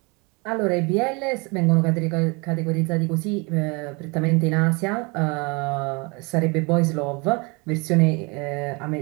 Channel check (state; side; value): quieter; left; 29.1 dB